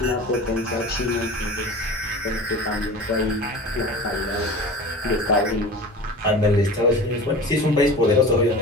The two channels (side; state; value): both; normal; correlation 0.35